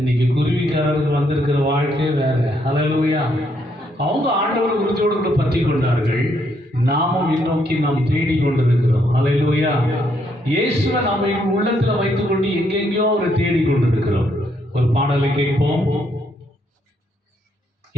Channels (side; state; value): both; normal; correlation 0.73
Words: குருவிக்காரர்கள் வந்திருக்கிற வாழ்க்கை வேற. ஹல்லேலூயா. அவங்க ஆண்டவர் உறுதியோடு கூட பற்றி கொண்டார்கள். நாமும் முன்னோக்கி நாம் தேடி கொண்டிருக்கிறோம். ஹல்லேலூயா. இயேசுவை நாம உள்ளத்துல வைத்துக் கொண்டு எங்கெங்கயோ ஒரு தேடி கொண்டிருக்கிறோம். ஒரு பாடலை கேட்போம்.